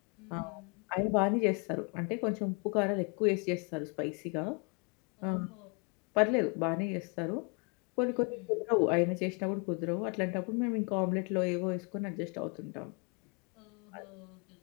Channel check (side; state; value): right; quieter; 34.3 dB